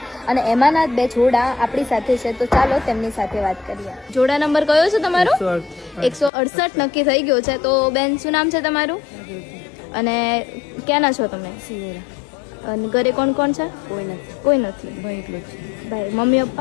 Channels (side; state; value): right; drops out; at 6.3 s